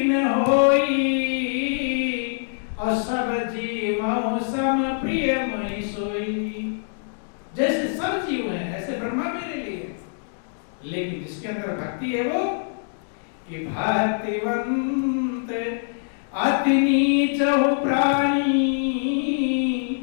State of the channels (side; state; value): right; silent; digital silence